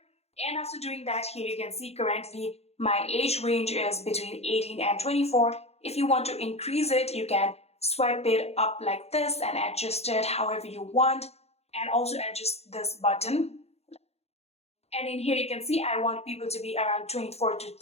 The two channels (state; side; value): late; right; 0.30 ms